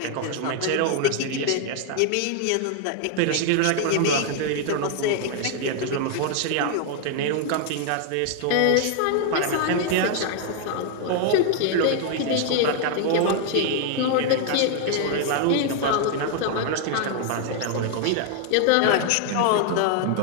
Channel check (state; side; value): different; both; correlation 0.00